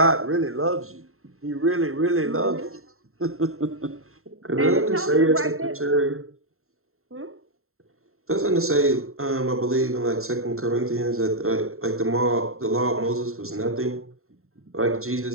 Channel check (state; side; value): late; left; 0.62 ms